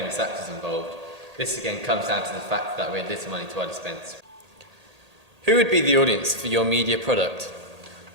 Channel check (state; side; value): late; left; 1.8 ms